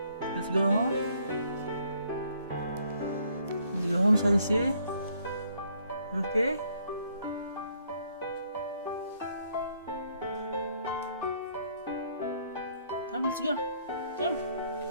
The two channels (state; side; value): inverted; both; correlation -0.66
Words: Let's go home. Let's go home, Saisi. Okay? Come, let's go. Come.